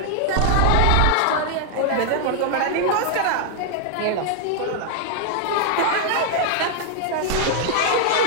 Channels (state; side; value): different; both; correlation 0.00